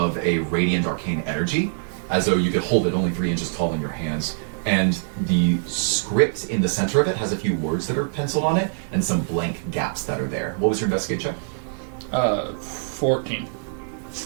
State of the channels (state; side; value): silent; left; 56 dB below the other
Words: a radiant arcane energy, as though you could hold it only 3 inches tall in your hands. And the script in the center of it has a few words that are penciled on it and some blank gaps that are there. What was your investigate check? 14.